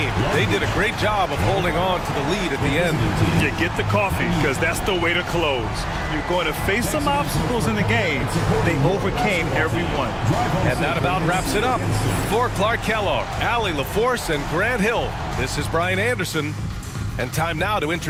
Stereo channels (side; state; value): both; identical; correlation 1.00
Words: They did a great job of holding on to the lead at the end. You get the coffee because that's the way to close. You're going to face some obstacles in the game. They overcame every one. And that about wraps it up. For Clark Kellogg, Allie LaForce, and Grant Hill, this is Brian Anderson. And time now to